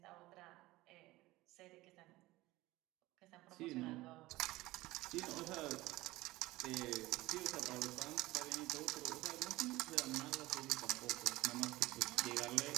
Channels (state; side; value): quieter; left; 18.7 dB